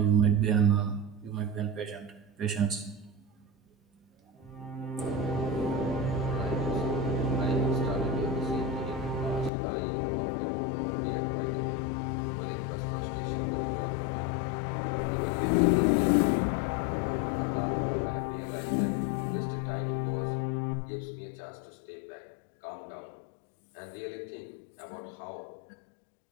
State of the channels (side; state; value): right; drops out; at 9.5 s